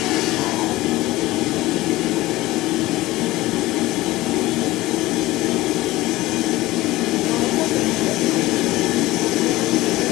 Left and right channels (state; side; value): quieter; right; 18.1 dB